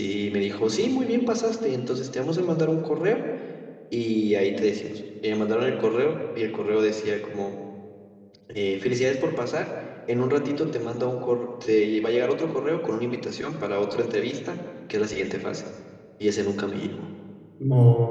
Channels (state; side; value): identical; both; correlation 1.00